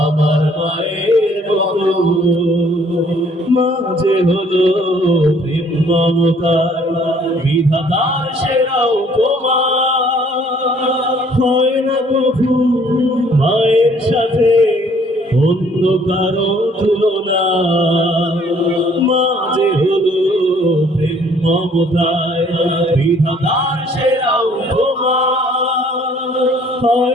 মায়ের মতো। মাঝে হলো প্রেম মমতার বিধাতার সেরা উপমা। হয় না প্রভু মায়ের সাথে অন্য কারো তুলনা। মাঝে হলো প্রেম মমতায় বিধাতার সেরা উপমা।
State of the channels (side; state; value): both; normal; correlation 0.60